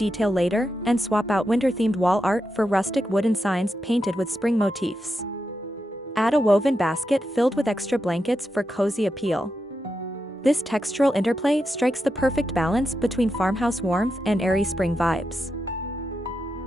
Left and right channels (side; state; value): both; normal; correlation 0.87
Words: later, and swap out winter-themed wall art for rustic wooden signs painted with spring motifs. Add a woven basket filled with extra blankets for cozy appeal. This textural interplay strikes the perfect balance between farmhouse warmth and airy spring vibes.